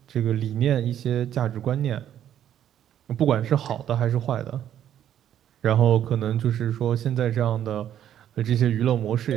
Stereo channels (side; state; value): left; quieter; 10.6 dB